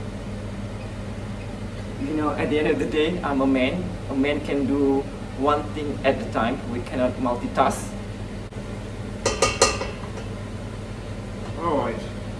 You know, at the end of the day, I'm a man. A man can do one thing at a time. We cannot multitask. Alright.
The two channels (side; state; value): both; identical; correlation 1.00